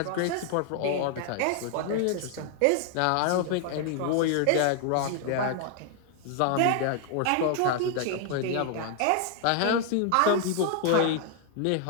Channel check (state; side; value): different; both; correlation 0.00